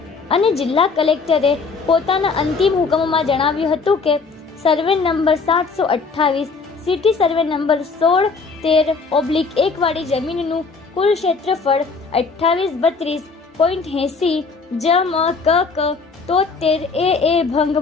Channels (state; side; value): quieter; right; 4.6 dB